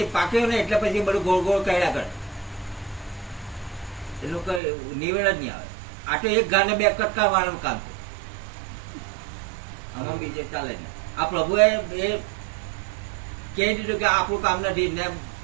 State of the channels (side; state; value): left; drops out; at 4.6 s